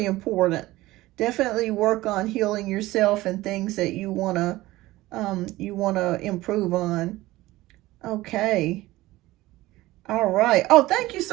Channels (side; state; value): left; quieter; 17.9 dB